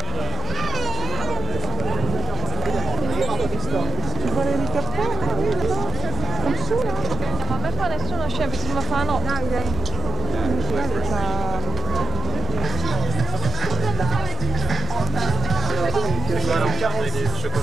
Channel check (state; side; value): quieter; left; 5.7 dB